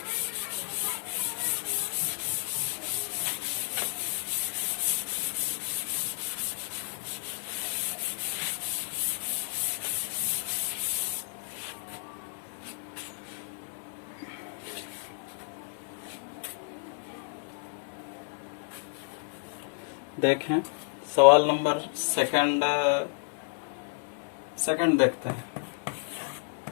देखें सवाल नंबर सेकंड देखते हैं।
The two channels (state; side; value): silent; right; digital silence